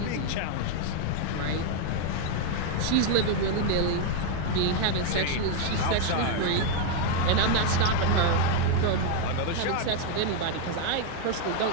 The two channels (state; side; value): different; both; correlation 0.01